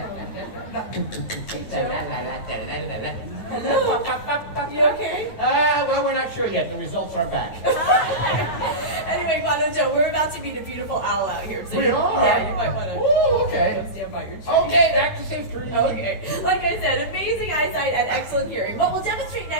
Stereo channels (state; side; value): late; right; 9.5 ms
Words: Hello? You okay? Well, we're not sure yet. The results aren't back. Anyway, Guano Joe, we're about to meet a beautiful owl out here. So We are? Yeah, you might want to Ooh, okay. stand by your tree. Okay, back to safe tree. Okay. Like I said, amazing. amazing eyesight and excellent hearing. What we'll demonstrate